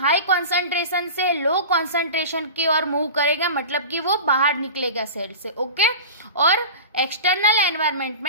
कॉन्सेंट्रेशन से लो कॉन्सेंट्रेशन की ओर मूव करेगा, मतलब कि वो बाहर निकलेगा सेल से। ओके, और एक्सटर्नल एनवायरनमेंट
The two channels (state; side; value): inverted; both; correlation -0.32